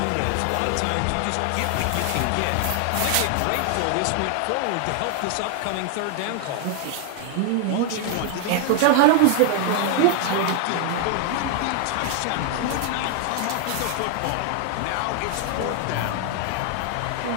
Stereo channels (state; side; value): different; both; correlation 0.00